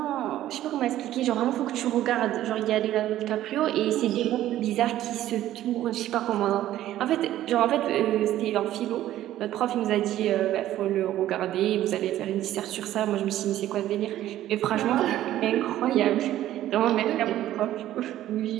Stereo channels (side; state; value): left; quieter; 13.3 dB